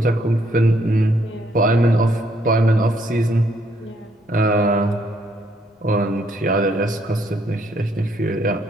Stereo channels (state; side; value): normal; both; correlation 0.70